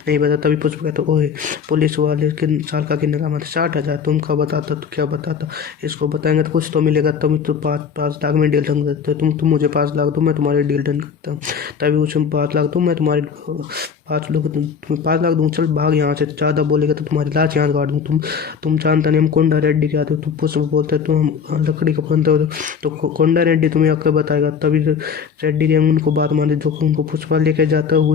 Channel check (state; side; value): quieter; right; 6.6 dB